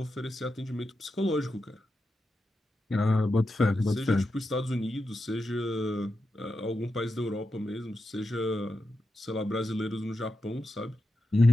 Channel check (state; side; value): normal; both; correlation 0.88